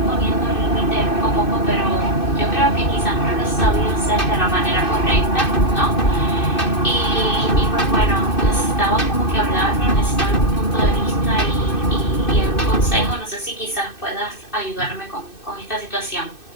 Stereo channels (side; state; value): right; late; 2.6 ms